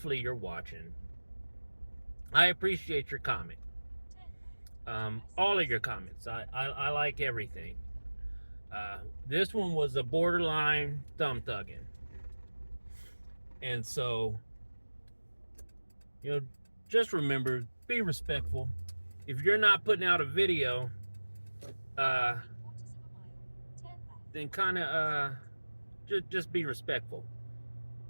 you're watching. I appreciate your comment. All of your comments. I like everything. This one was a borderline thumb thugging. And so, just remember, be respectful. If you're not putting out a video, then kind of just be respectful.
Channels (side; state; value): both; inverted; correlation -1.00